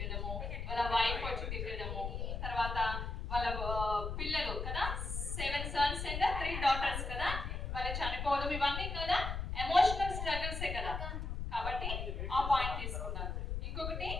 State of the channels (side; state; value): left; noise; rumble, 4 dB below the sound